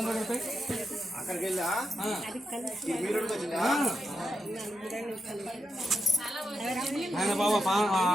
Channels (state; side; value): normal; both; correlation 0.85